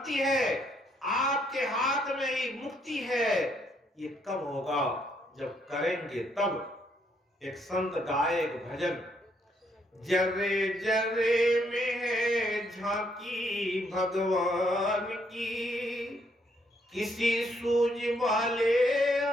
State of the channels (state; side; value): normal; both; correlation 0.72